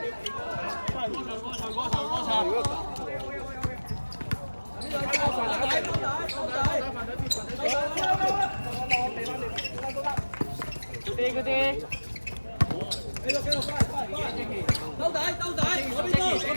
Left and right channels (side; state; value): both; inverted; correlation -1.00